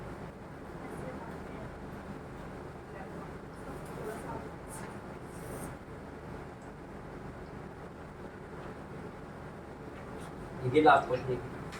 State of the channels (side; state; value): both; identical; correlation 1.00